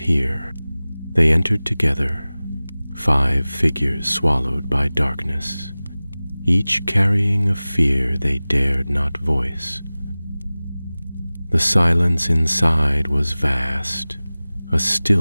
They entered together, 5 figures swallowed by darkness, each carrying a fear they dared not voice. The silence inside was vast, a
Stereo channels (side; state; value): both; inverted; correlation -0.98